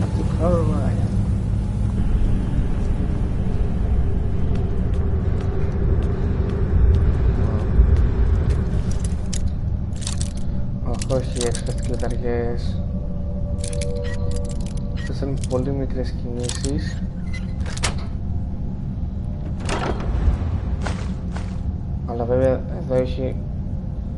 Όχι, έξπερτ κλειδαριές. Αυτές είναι πολύ μικρές κινήσεις. Αλλά βέβαια εδώ έχει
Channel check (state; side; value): identical; both; correlation 1.00